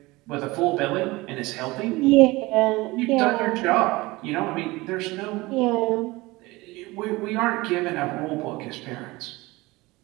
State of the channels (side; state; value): left; quieter; 21.4 dB